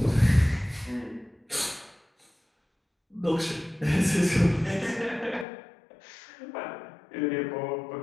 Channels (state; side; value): drops out; right; at 5.5 s